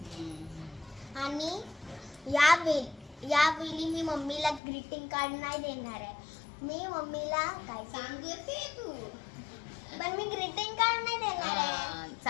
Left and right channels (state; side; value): drops out; right; at 4.6 s